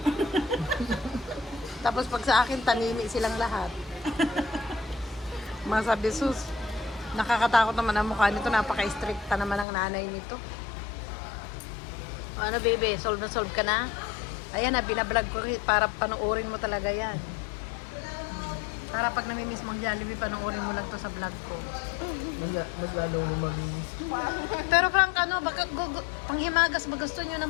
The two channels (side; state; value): right; drops out; at 9.7 s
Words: Tapos pag sa akin, tanimi silang lahat. Masabi, sus, nakakatakot naman ang mukha nito. Napaka-stricta naman ang nanay nito. O, ano, baby? Solve na solve ka na? Ayan na, binablog ko para panoorin mo talaga yan. Para pag namimiss mong Jollibee, panoorin mo lang to sa vlog ko. Mas lalo mo mamimiss. Pero Frank, ano, baka, panghimagas ba? Gusto nyo ng